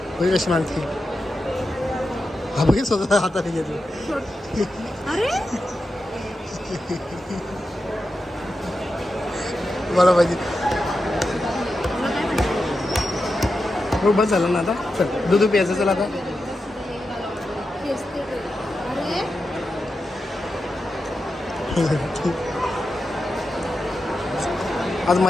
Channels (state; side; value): normal; both; correlation 0.89